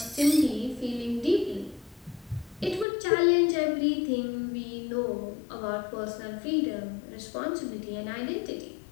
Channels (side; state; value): right; drops out; at 2.9 s